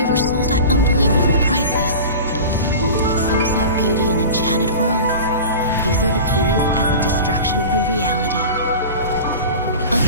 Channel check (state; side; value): inverted; both; correlation -0.34